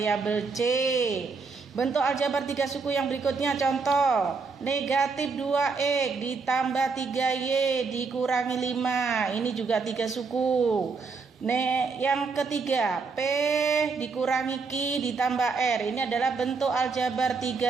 C. Bentuk aljabar tiga suku yang berikutnya, contoh negatif 2x ditambah 3y dikurangi 5. Ini juga tiga suku. Yang ketiga, P dikurangi Q ditambah R. Ini adalah bentuk aljabar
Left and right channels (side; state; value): left; quieter; 4.7 dB